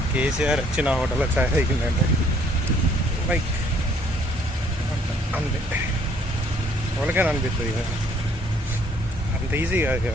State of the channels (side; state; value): both; normal; correlation 0.62